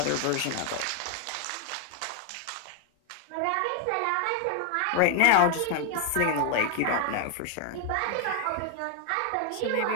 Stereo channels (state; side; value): different; both; correlation 0.00